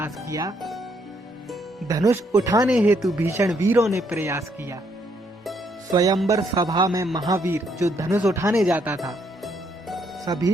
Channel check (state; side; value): normal; both; correlation 0.72